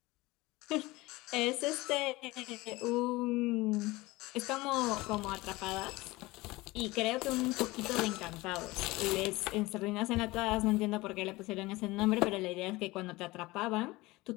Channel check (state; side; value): quieter; right; 20.9 dB